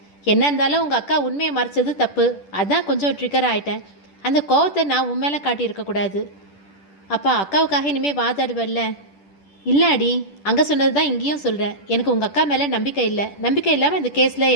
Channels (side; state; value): right; late; 10 ms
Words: என்ன இருந்தாலும் உங்கள் அக்கா உண்மையை மறைச்சது தப்பு, அதான் கொஞ்சம் ட்ரிகர் ஆகிட்டேன். அந்த கோவத்தை நான் உன் மேலே காட்டியிருக்கக்கூடாது. அப்பா, அக்காவுக்காக இனிமேல் வாதாடுவல்ல? இல்லை அடி, அங்கே சொன்னது தான் இங்கேயும் சொல்கிறேன். எனக்கு உங்கள் அக்கா மேலே நம்பிக்கை இல்லை. நம்பிக்கை இல்லாமல் இந்த கேஸில்